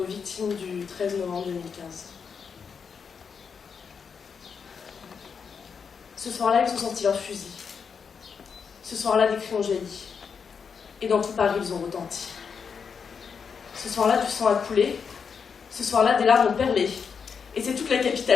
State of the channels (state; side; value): quieter; right; 6.2 dB